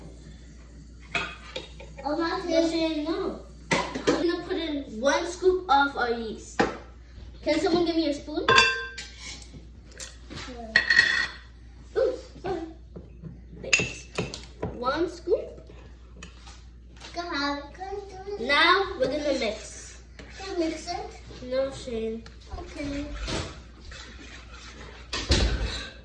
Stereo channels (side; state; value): both; identical; correlation 1.00